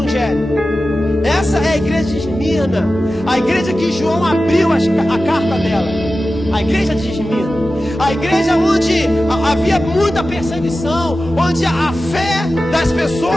Essa é a igreja de Esmirna, a igreja que João abriu a carta dela. A igreja de Esmirna, a igreja onde havia muita perseguição, onde a fé das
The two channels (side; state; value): both; normal; correlation 0.94